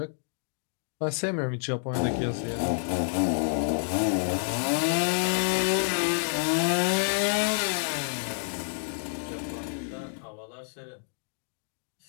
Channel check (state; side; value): silent; right; digital silence